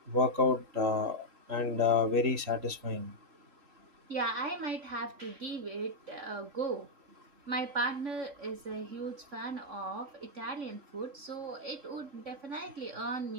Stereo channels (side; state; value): left; late; 3.7 ms